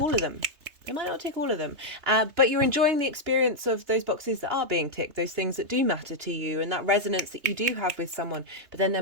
all of them. But you're enjoying the experience of those boxes that are being ticked, those things that do matter to you, and that resonance that you do have with someone. But then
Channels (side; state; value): left; late; 3.3 ms